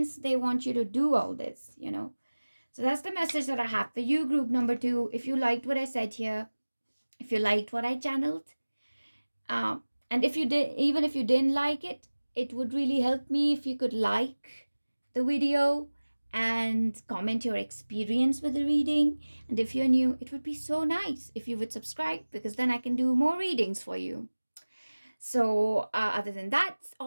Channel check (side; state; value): both; inverted; correlation -1.00